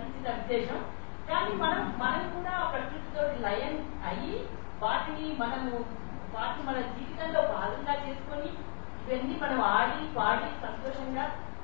విశేషం. కానీ మనం కూడా ప్రకృతితో లయం అయ్యి వాటిని మన జీవితంలో భాగంగా చేసుకొని ఇవన్నీ మనం ఆడి పాడి సంతోషంగా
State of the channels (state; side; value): silent; right; digital silence